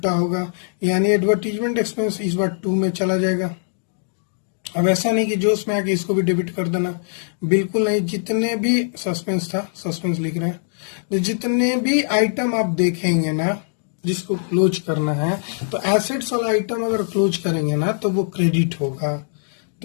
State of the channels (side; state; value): right; silent; digital silence